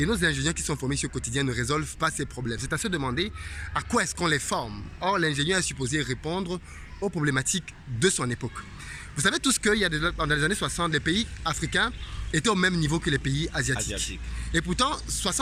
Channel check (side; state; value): both; identical; correlation 1.00